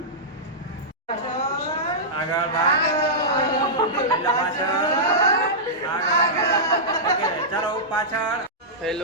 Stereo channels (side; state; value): both; normal; correlation -0.13